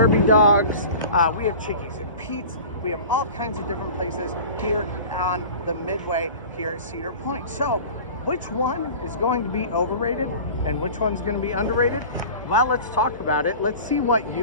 dogs. We have Chickies and Pete's. We have all kinds of different places here on the midway here at Cedar Point. So which one is going to be overrated and which one's going to be underrated? Well, let's talk about it. Let's see what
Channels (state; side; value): inverted; both; correlation -0.38